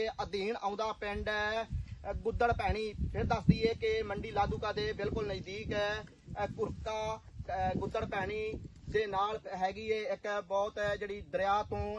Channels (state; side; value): identical; both; correlation 1.00